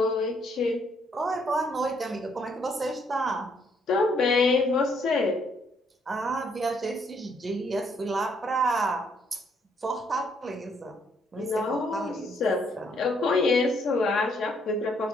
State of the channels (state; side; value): normal; both; correlation 0.70